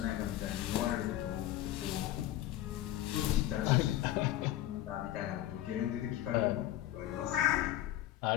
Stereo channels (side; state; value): right; quieter; 13.7 dB